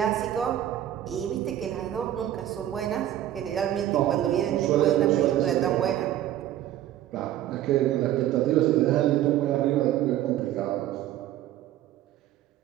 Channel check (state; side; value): quieter; left; 12.5 dB